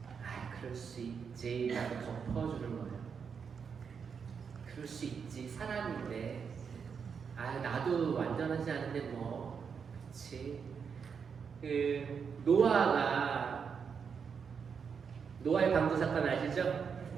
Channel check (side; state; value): left; quieter; 6.4 dB